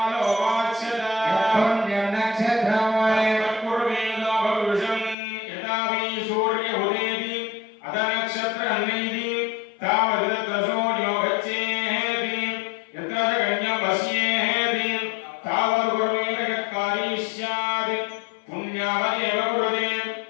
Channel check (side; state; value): right; drops out; at 5.2 s